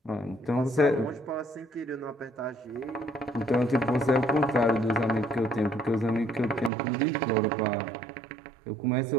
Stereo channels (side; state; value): left; drops out; at 6.7 s